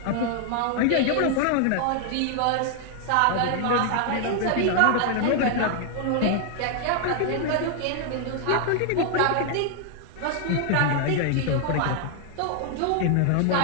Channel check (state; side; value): different; both; correlation 0.00